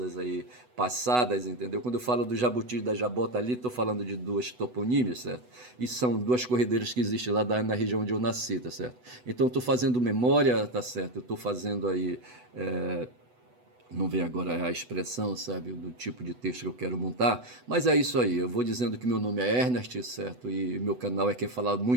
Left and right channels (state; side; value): late; left; 8.0 ms